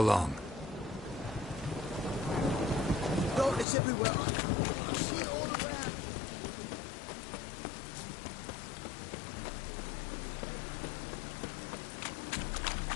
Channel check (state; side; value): drops out; right; at 3.7 s